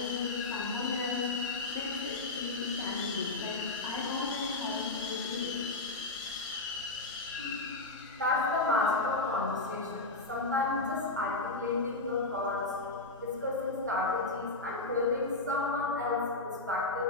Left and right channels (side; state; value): right; quieter; 3.2 dB